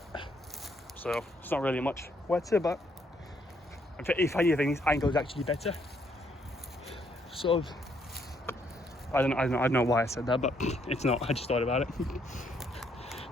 So it's not really much wetter, but if anything, this angle is actually better. Sort of. I don't know why I said that, but it's not. I just thought about it.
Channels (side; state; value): both; normal; correlation 0.71